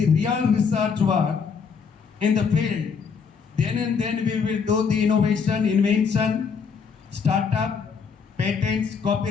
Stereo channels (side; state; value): right; quieter; 5.9 dB